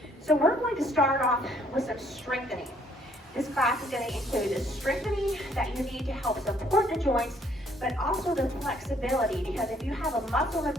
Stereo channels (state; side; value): normal; both; correlation 0.65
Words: So we're going to start off with some strengthening. This class is going to include the strengthening that you need to help support the joints, but also the flexibility, because if you have a muscle